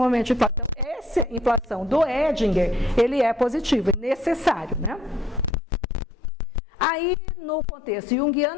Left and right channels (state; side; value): drops out; right; at 5.5 s